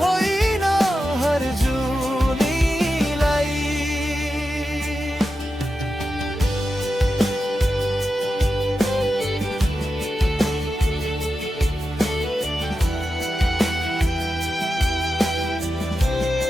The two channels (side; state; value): both; normal; correlation 0.90